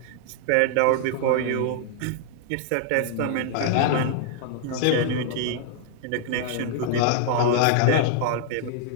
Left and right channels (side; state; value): both; different; correlation -0.01